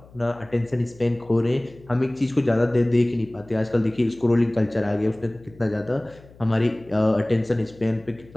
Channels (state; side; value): noise; left; hum, 24 dB below the sound